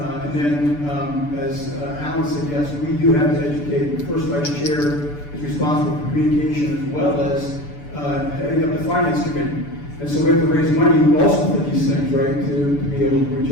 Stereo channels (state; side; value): late; right; 6.9 ms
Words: then, as Alan said, yes, we do have to educate. The first vice chair is responsible for communication as well as heading up the finance committee. And so we have to raise money also for these things, right, to be able to reach